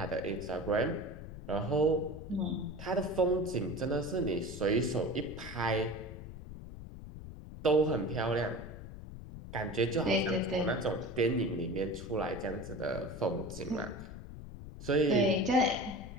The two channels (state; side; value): noise; left; rumble, 12 dB below the sound